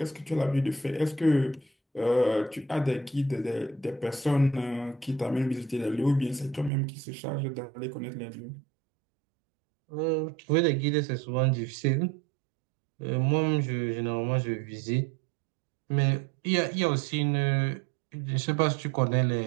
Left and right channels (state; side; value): drops out; left; at 6.7 s